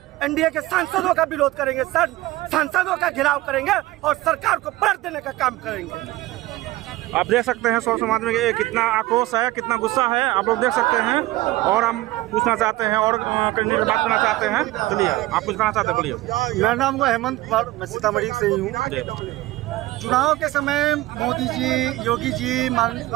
NDA के सांसदों का विरोध करेंगे, सांसदों का घेराव करेंगे और सरकार को पलट देने का काम करेंगे। आप देख सकते हैं स्वर्ण समाज में कितना आक्रोश है, कितना गुस्सा है, आप लोग देख सकते हैं। और हम पूछना चाहते हैं और करने की बात करना चाहते हैं। चलिए, आप कुछ कहना चाहते हैं, बोलिए। मेरा नाम है हेमंत कुमार, मैं सीतामढ़ी से ही हूँ। चुनाव के समय मोदी जी, योगी जी,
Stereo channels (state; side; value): quieter; left; 18.1 dB